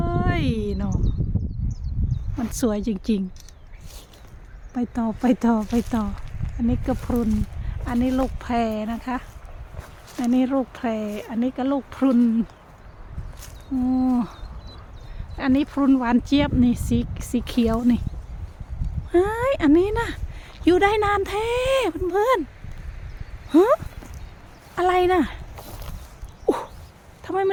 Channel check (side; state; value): both; identical; correlation 1.00